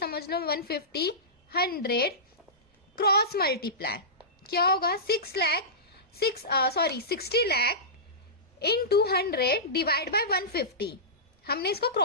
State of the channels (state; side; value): normal; both; correlation -0.18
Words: लो 150, 100 क्रॉस मल्टीप्लाई क्या होगा? 60 लाख इन 200 डिवाइड बाय 150। हमने इसको